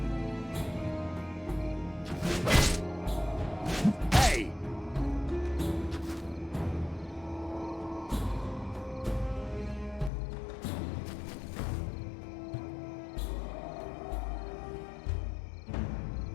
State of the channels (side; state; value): right; drops out; at 10.1 s